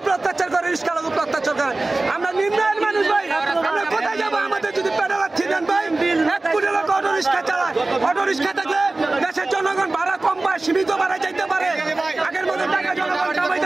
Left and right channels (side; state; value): left; quieter; 3.1 dB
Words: অত্যাচার করে, রিস্কার উপর অত্যাচার করে। আমরা নিম্নায়ের মানুষ ভাই, আমরা কোথায় যাবো? আমাদের যদি পেটে রাখছি দেন ভাই, 1 কোটি লোক অটো রিক্সা চালায়। অটো রিক্সা থাকলে দেশের জনগণ ভাড়া কম পায়, সীমিত ভাড়া যাইতে পারে। আগের মতো টাকা জনগণ